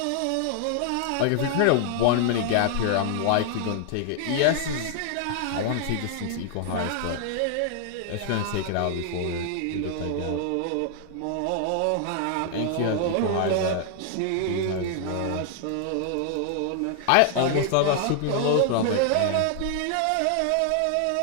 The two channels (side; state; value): both; different; correlation 0.00